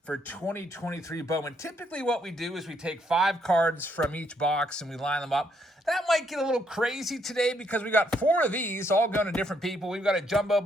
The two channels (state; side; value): normal; both; correlation 0.73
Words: for 2023 BOWMAN. Typically what we do is we take 5 cards from each box and we line them up. That might get a little crazy today because we got 4 of these all going to different people. We've got a jumbo